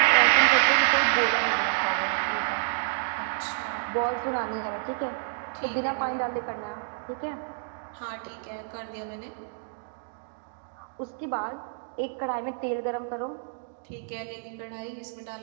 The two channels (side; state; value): left; silent; digital silence